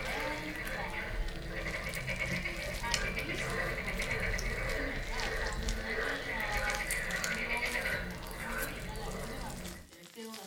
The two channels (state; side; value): identical; both; correlation 1.00